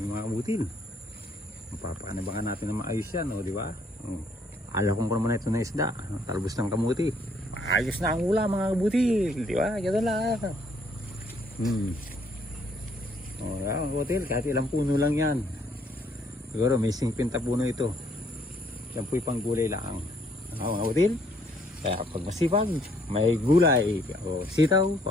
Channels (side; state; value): both; normal; correlation 0.66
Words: mga kabutil. Mapapanabangan natin na maayos yan, di ba? Ala kong naman ito na isda, talbos ng kamuti. Ayos na ang ulam mga kabutil, di ba? Ganun lang. Yan mga kabutil, kahit ilang puno lang yan. Siguro may 50 puno ito. Yan po'y panggulay lang. Mga kabutil, kaya pag masipag, may gulay o sitaw,